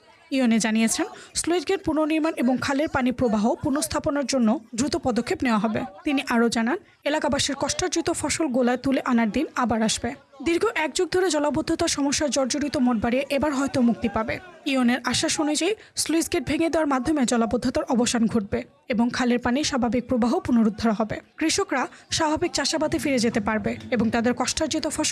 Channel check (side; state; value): both; identical; correlation 1.00